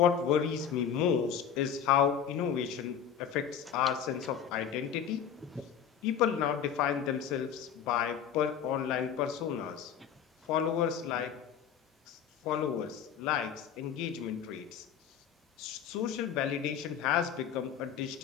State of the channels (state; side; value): quieter; right; 8.3 dB